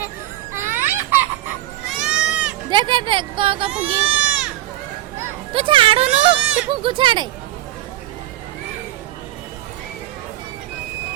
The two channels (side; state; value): left; quieter; 14.5 dB